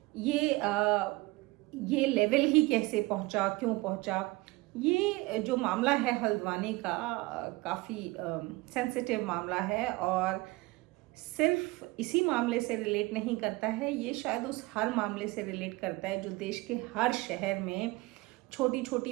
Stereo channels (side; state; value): left; quieter; 22.3 dB